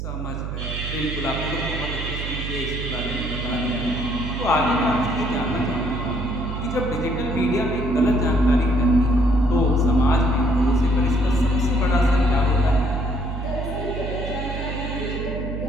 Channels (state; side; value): noise; right; hum, 5 dB below the sound